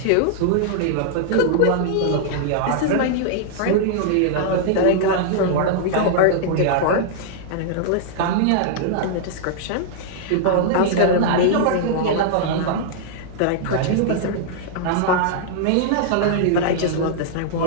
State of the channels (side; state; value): both; different; correlation -0.01